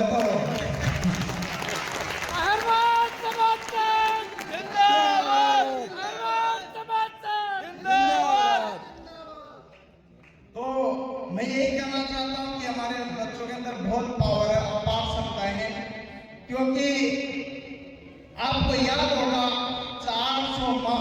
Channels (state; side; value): identical; both; correlation 1.00